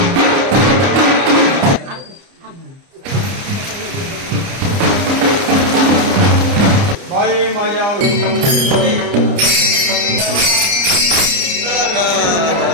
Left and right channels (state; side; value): late; left; 30 ms